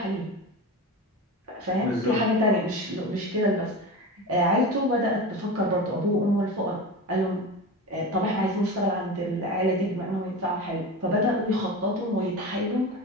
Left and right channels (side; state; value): both; normal; correlation 0.27